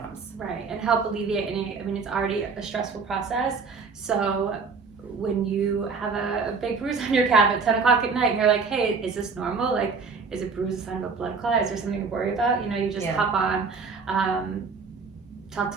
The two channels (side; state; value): left; quieter; 4.9 dB